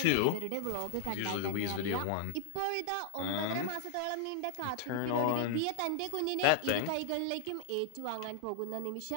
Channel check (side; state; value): both; different; correlation 0.00